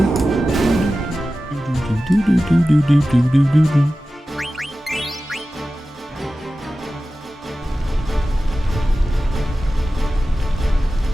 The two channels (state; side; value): normal; both; correlation 0.95